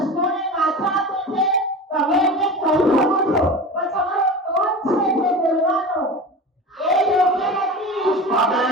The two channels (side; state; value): both; normal; correlation 0.30